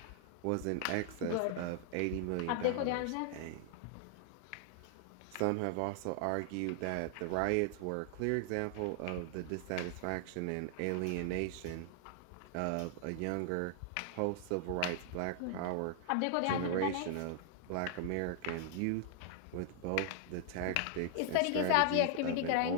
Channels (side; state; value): both; different; correlation 0.00